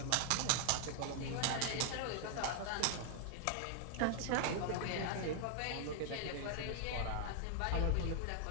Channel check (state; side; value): different; both; correlation 0.00